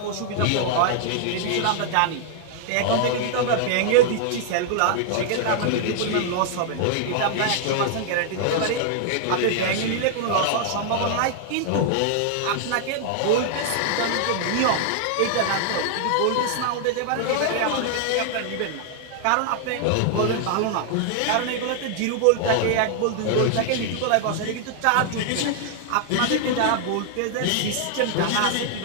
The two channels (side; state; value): both; different; correlation 0.00